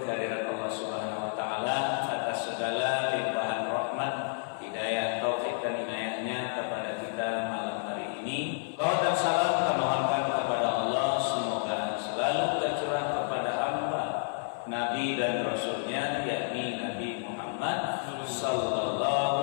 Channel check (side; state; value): right; silent; 58 dB below the other